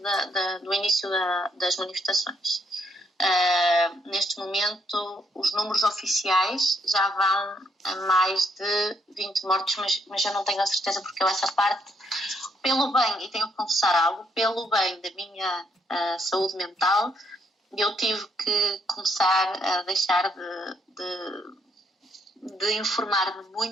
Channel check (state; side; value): normal; both; correlation 0.73